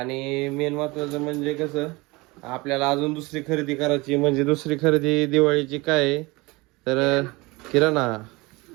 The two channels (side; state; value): left; quieter; 23.7 dB